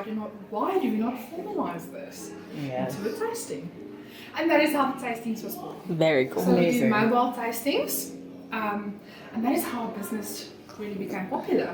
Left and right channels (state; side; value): identical; both; correlation 1.00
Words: do we not formalize this into a tasting? And that is how the tastings was born. Very cool. So we do Amazing. mobile tastings, and that is how our business really became popular.